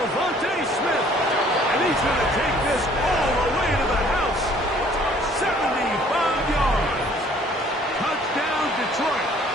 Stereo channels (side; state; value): both; normal; correlation 0.57